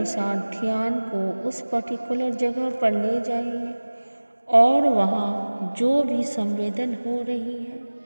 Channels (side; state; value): both; inverted; correlation -1.00